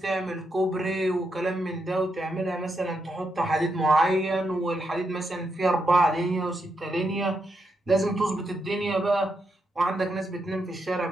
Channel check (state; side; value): normal; both; correlation 0.82